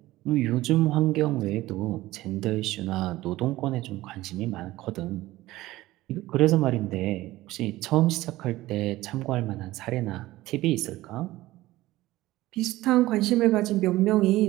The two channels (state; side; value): quieter; left; 17.2 dB